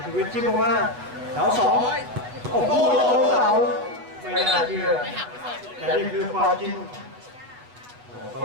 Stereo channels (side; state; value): left; late; 8.1 ms